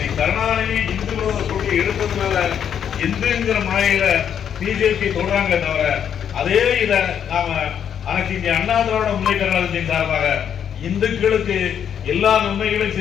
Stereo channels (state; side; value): quieter; right; 8.6 dB